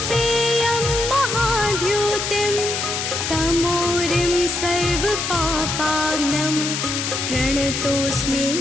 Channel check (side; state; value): left; noise; hiss, 2 dB below the sound